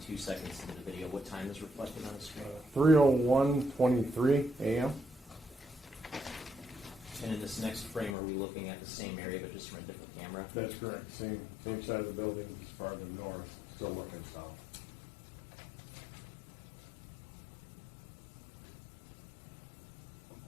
seconds into the video, what time is reflected on the screen? 3:01:23 a.m. And in this next frame, are we looking at the same area but just from a different camera? That's correct. Same side of the building, just farther north, still looking south.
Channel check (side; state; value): right; drops out; at 8.2 s